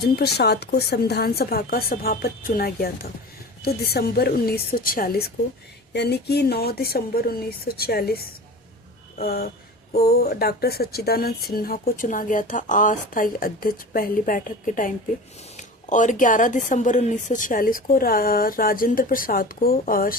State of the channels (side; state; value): both; normal; correlation 0.34